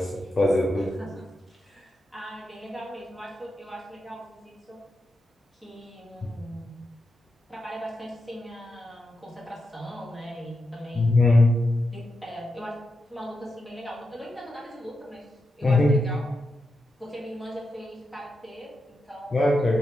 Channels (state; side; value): normal; both; correlation 0.87